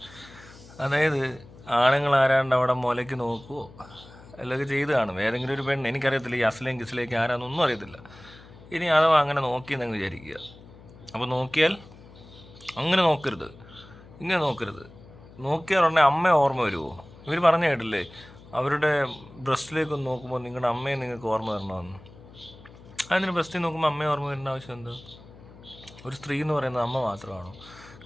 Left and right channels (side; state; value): left; noise; hum, 21 dB below the sound